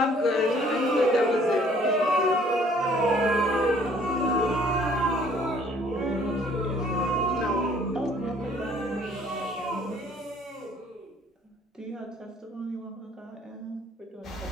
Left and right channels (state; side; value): normal; both; correlation 0.58